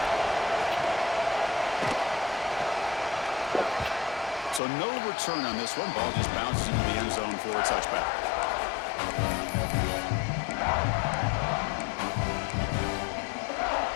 So no return on this one. Ball just bounces into the end zone for a touchback.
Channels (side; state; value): right; drops out; at 4.6 s